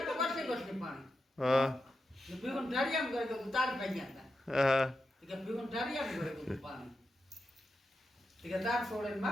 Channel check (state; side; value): normal; both; correlation 0.88